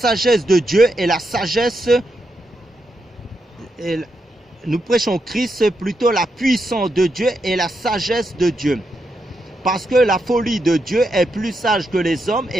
de Dieu et la sagesse. Nous prêchons Christ, plutôt la puissance de Dieu et la sagesse de Dieu. Parce que la folie de Dieu est plus sage que les hommes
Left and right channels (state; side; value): normal; both; correlation 0.83